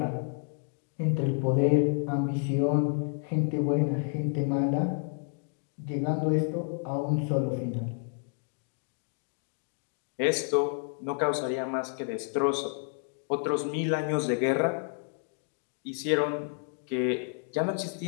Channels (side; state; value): right; silent; 58 dB below the other